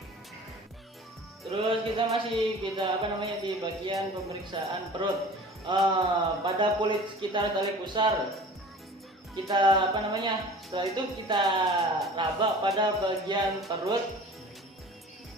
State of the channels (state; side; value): normal; both; correlation 0.42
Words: Terus kita masih di bagian pemeriksaan perut. Pada kulit sekitar tali pusar kita setelah itu kita raba pada bagian perut